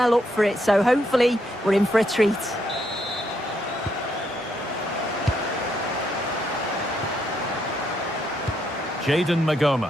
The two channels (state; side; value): normal; both; correlation 0.76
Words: up for it, so hopefully we're in for a treat. Jayden Magoma.